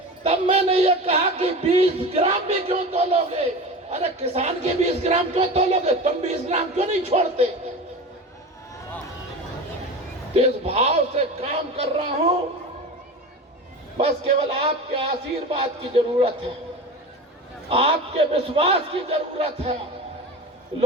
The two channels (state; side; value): normal; both; correlation 0.30